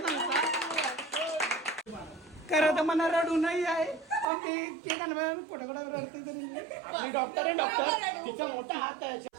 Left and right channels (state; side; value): drops out; left; at 4.2 s